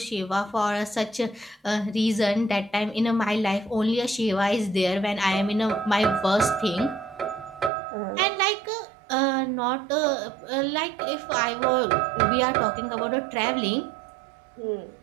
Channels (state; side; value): drops out; left; at 7.7 s